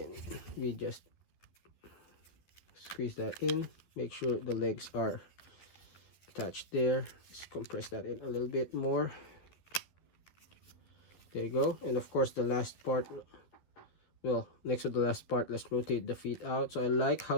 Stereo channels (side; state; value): right; late; 12 ms